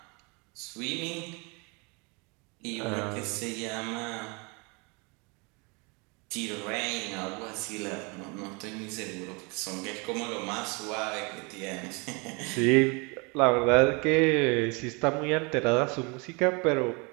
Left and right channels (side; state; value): left; quieter; 30.1 dB